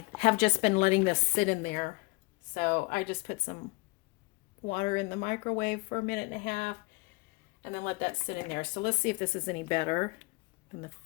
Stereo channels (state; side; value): quieter; right; 26.1 dB